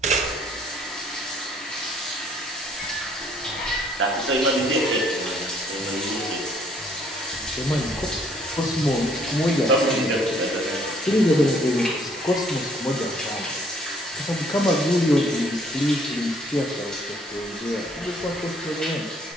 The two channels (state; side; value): normal; both; correlation 0.63